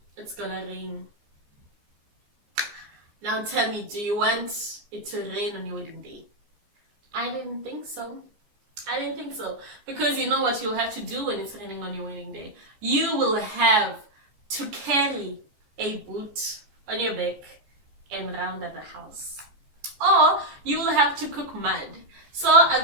it's gonna rain. Now tell me, do you want it to rain on your wedding day? I didn't think so. I didn't think so. Because you know what you'll have to do when it's raining on your wedding day? You will have to carry a boot on your back and round at the house. Or you will have to cook mud. So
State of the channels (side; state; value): left; late; 14 ms